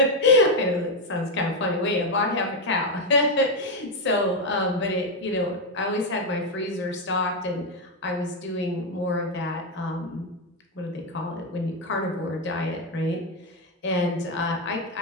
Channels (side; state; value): both; normal; correlation 0.05